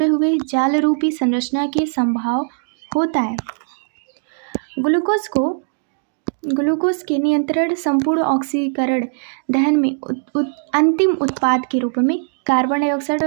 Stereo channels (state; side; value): silent; left; digital silence